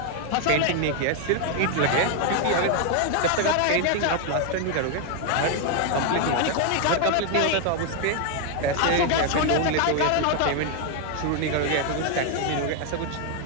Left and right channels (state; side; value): different; both; correlation 0.01